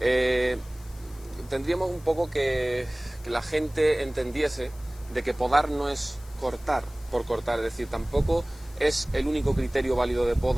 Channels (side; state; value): left; noise; hiss, 24 dB below the sound